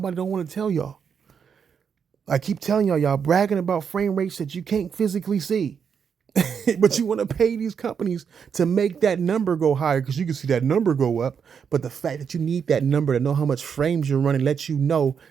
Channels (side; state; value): left; quieter; 6.9 dB